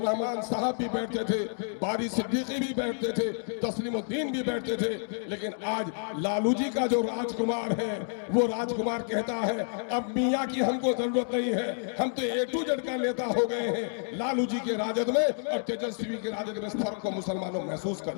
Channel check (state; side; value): silent; right; digital silence